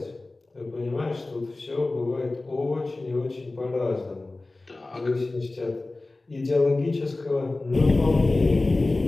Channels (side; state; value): right; quieter; 3.1 dB